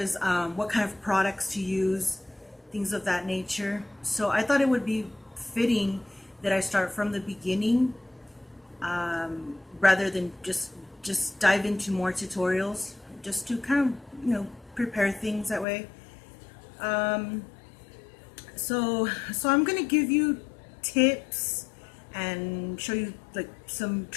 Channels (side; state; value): right; drops out; at 15.7 s